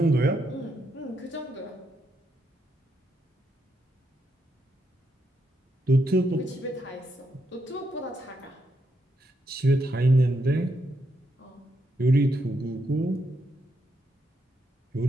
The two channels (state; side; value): normal; both; correlation 0.80